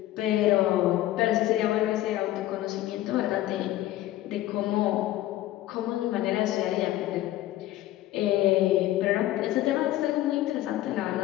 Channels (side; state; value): right; quieter; 14.6 dB